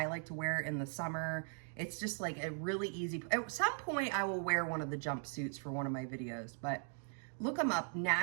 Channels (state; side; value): silent; left; 52 dB below the other